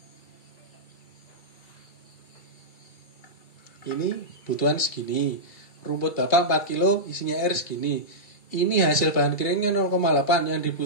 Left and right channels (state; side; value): late; right; 2.3 ms